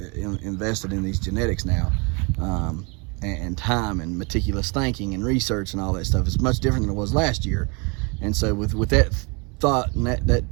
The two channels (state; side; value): quieter; left; 31.0 dB